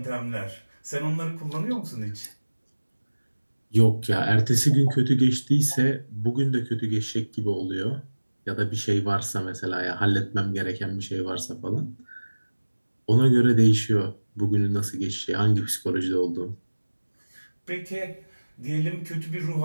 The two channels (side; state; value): both; inverted; correlation -1.00